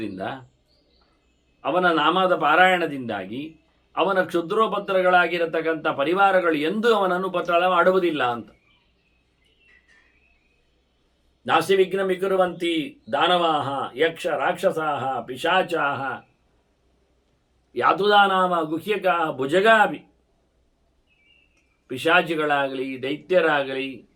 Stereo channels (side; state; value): both; identical; correlation 1.00